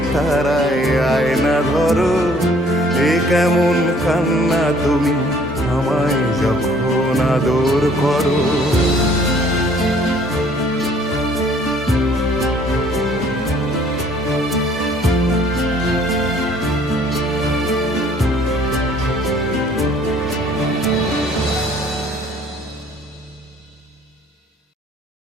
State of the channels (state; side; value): normal; both; correlation 0.58